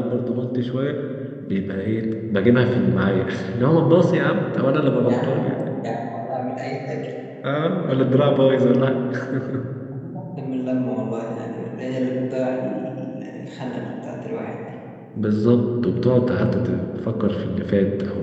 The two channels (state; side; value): identical; both; correlation 1.00